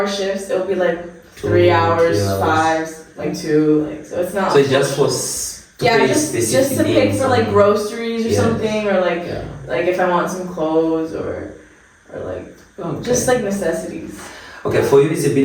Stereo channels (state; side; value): identical; both; correlation 1.00